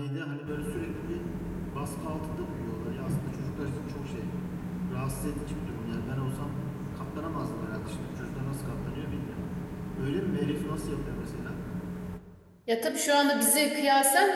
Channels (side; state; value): both; identical; correlation 1.00